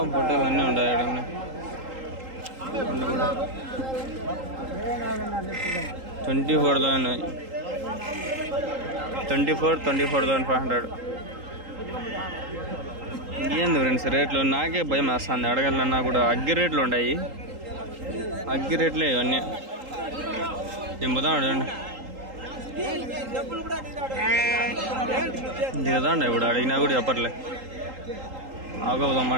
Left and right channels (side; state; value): left; late; 3.8 ms